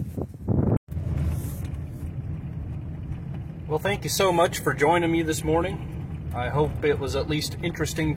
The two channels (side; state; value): both; identical; correlation 1.00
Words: Well, thank you so much for joining me this morning. I hope it was at least interesting